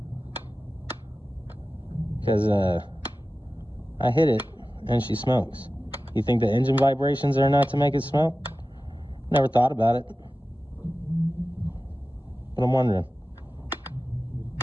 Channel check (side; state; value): both; normal; correlation 0.95